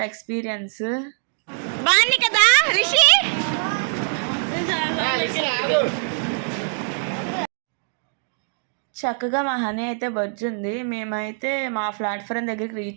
ఎక్స్పీరియన్స్. బాగుంది కదా రిషి. చక్కగా మా హనీ అయితే బొజ్జుంది. మేమైతే మా ప్లాట్ఫారం దగ్గరికి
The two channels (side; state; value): left; silent; 63 dB below the other